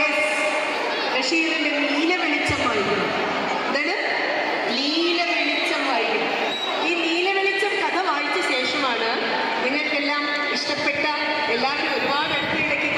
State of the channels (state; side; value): identical; both; correlation 1.00